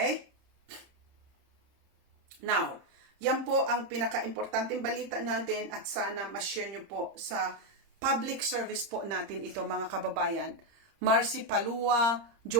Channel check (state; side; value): late; left; 30 ms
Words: Now, yan po ang pinaka-importanting balita natin at sana ma-share nyo po sa public service po natin ito, mga kababayan. Marcy Palua,